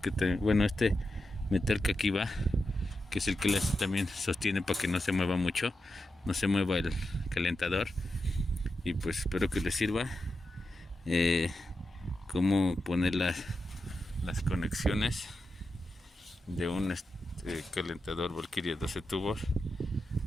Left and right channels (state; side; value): normal; both; correlation 0.89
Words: este metal que aquí va, que es el que también sostiene para que no se mueva mucho, no se mueva el calentador. Y pues espero que les sirva cómo poner las conexiones de un calentador Valkyria 12 tubos.